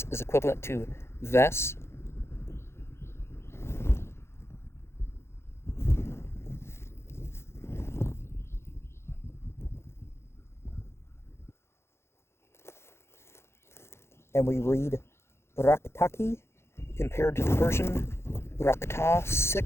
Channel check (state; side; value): late; right; 0.12 ms